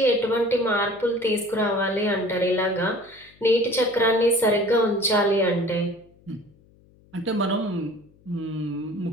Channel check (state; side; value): noise; left; hum, 29 dB below the sound